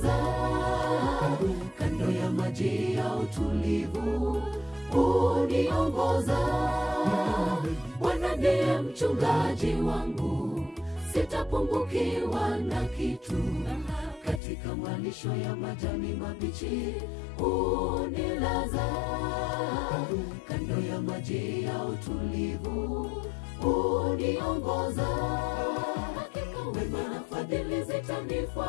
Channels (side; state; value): right; drops out; at 14.4 s